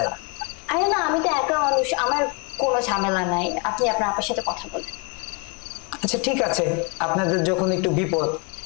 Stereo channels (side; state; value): right; quieter; 32.9 dB